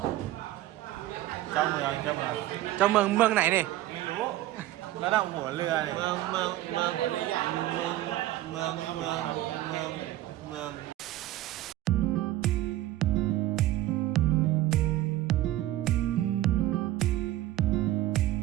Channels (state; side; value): quieter; left; 14.9 dB